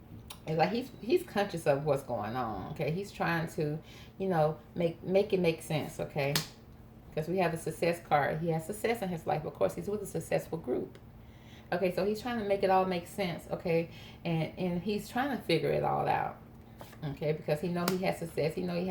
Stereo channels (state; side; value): identical; both; correlation 1.00